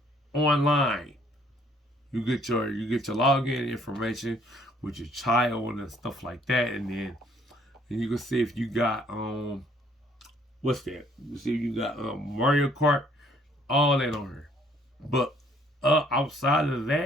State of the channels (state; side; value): normal; both; correlation 0.63